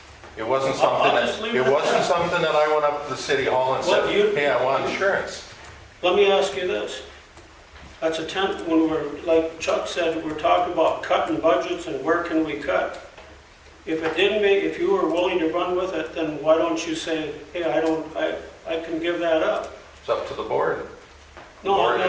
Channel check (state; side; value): identical; both; correlation 1.00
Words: It wasn't something I'll just leave that, it it at wasn't that. something that I went up to the city hall and Well, said, you- hey, I want insurance. let me ask you this. That's when we're, like Chuck said, we're talking about cutting budgets and where can we cut? If you were willing to run with it, then why don't you say, hey, I can give that up? It's up to the board. No, I'm Board,